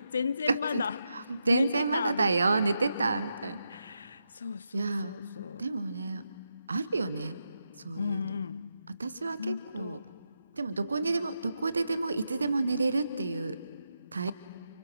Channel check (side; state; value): both; inverted; correlation -0.85